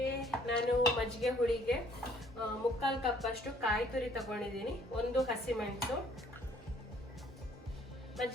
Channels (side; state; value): both; normal; correlation 0.61